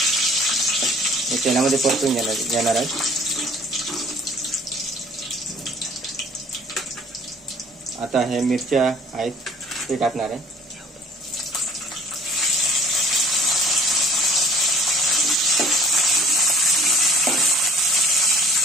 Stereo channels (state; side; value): normal; both; correlation 0.54